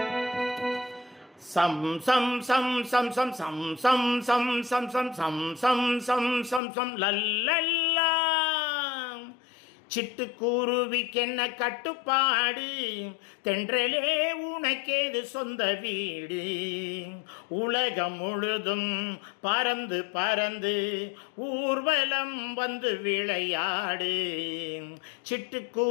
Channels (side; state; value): right; drops out; at 6.6 s